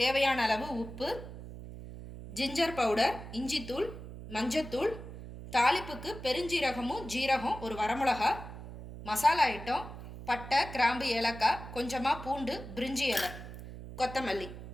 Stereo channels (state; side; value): noise; right; hum, 12 dB below the sound